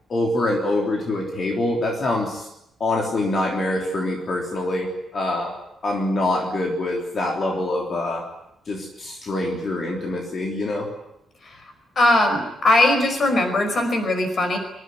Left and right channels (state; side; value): normal; both; correlation 0.79